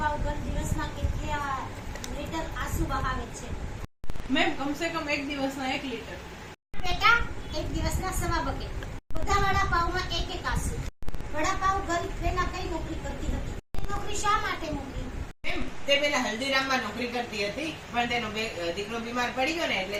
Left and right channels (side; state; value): both; identical; correlation 1.00